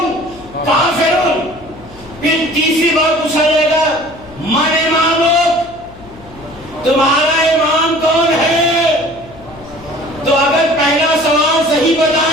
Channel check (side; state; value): left; noise; hum, 21 dB below the sound